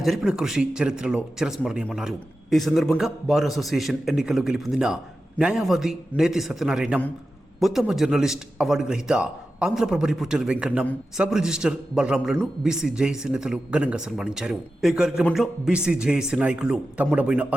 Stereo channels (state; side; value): normal; both; correlation 0.92